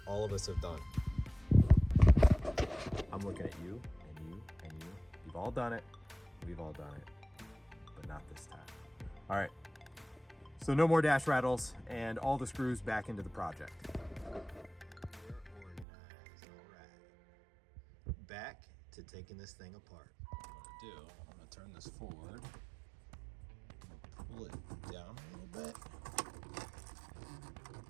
all of us have done. I'm looking at you and you and you. You've all done it. We've all done it, but not this time. All right, so no more dash rattles and all the screws back into the project. We're organized, all right. Back to taking this thing apart. What I'm gonna do, I'm gonna turn this forward. Pull it down a little bit,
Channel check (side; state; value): left; drops out; at 15.9 s